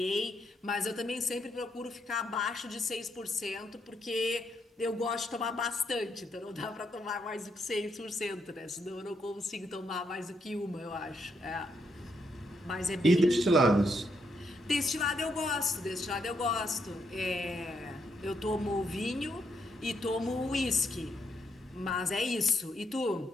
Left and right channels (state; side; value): normal; both; correlation 0.77